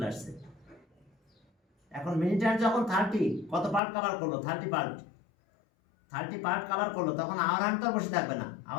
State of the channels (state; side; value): drops out; right; at 3.8 s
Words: আসছে। এখন মিনিট হ্যান্ড যখন 30 কত পার্ট কভার করলো? 30 পার্ট কভার করলো, তখন আওয়ার হ্যান্ড তো বসে থাকবে না।